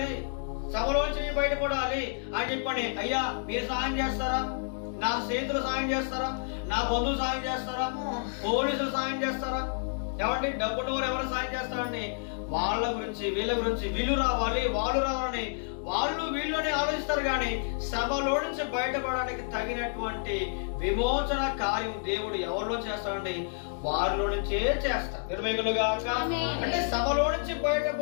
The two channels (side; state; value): right; silent; digital silence